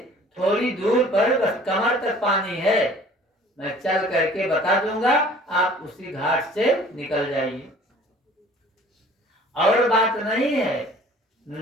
थोड़ी दूर पर बस कमर तक पानी है, मैं चल करके बता दूंगा, आप उसी घाट से निकल जाइए। और बात नहीं है,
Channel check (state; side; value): normal; both; correlation 0.51